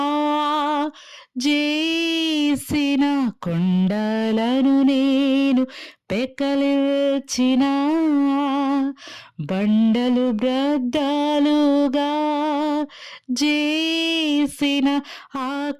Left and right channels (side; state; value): both; identical; correlation 1.00